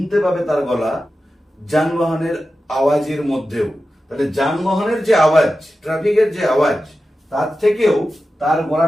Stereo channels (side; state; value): both; normal; correlation 0.93